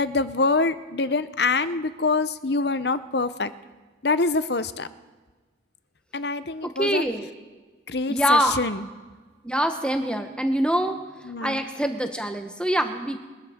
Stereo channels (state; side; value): normal; both; correlation 0.34